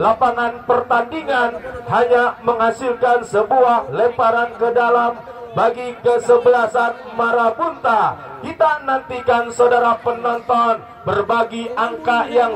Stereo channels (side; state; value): both; identical; correlation 1.00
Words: pertandingan hanya menghasilkan sebuah lemparan ke dalam bagi kesebelasan Marabunta. Kita nantikan, saudara penonton, berbagi angka yang